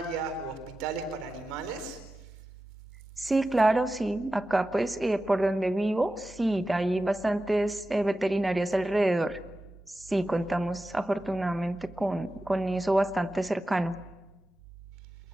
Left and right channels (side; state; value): both; normal; correlation 0.93